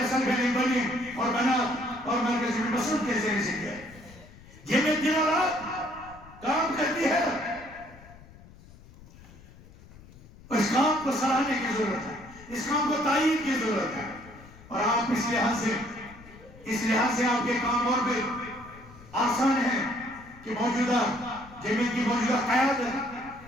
سلفیہ بنی اور بنات اور مرکز میں مسعود کے ذریعے سے دیا ہے۔ یہ میں دن اور رات کام کرتی ہے، اس کام کو سراہنے کی ضرورت ہے، اس کام کو تائید کی ضرورت ہے، اور آپ اس لحاظ سے آپ کے کام اور بھی آسان ہیں کہ موجودہ جمعیت کی موجودہ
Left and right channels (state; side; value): noise; left; rumble, 21 dB below the sound